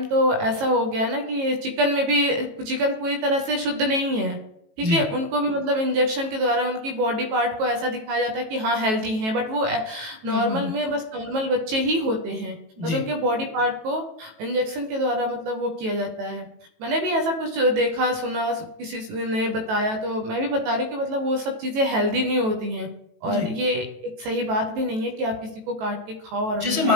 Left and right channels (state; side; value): late; left; 18 ms